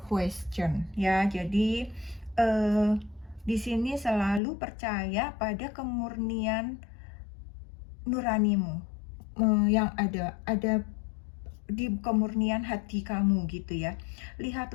question. Ya, jadi di sini selalu percaya pada kemurnian nuranimu yang ada di kemurnian hati kamu gitu ya.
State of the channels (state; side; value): drops out; right; at 4.4 s